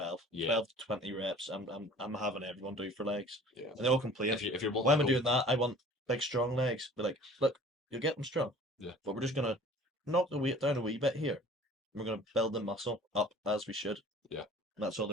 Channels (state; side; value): normal; both; correlation 0.47